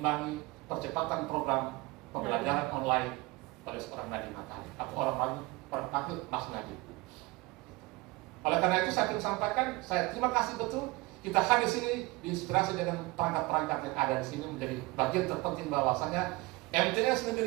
percepatan program pembelajaran online pada seorang Nadiem Makarim atau orang lain panggil Mas Nadiem. Oleh karena itu saya ingin sampaikan, saya terima kasih betul kita hadir di sini diinspirasi dengan perangkat-perangkat yang ada di sini menjadi bagian terpenting bahwasanya MTS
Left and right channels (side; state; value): left; quieter; 23.0 dB